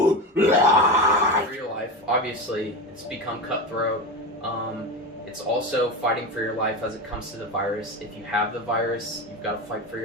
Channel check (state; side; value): normal; both; correlation 0.21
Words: life. For your life, obviously, it's become cutthroat. It's also fighting for your life as it comes to the virus. If you have the virus, you've got to fight for